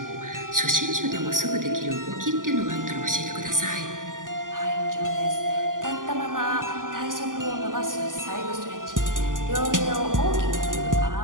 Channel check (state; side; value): late; left; 0.89 ms